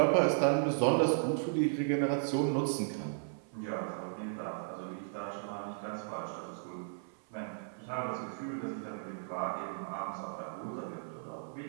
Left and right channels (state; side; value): silent; left; 54 dB below the other